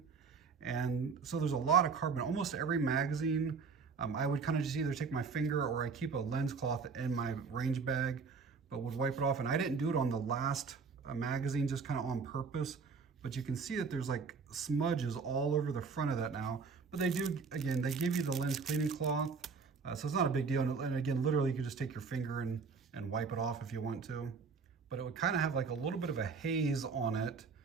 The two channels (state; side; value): quieter; left; 5.2 dB